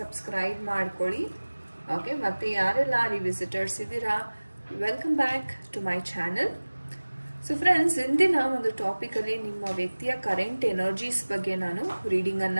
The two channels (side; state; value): both; inverted; correlation -1.00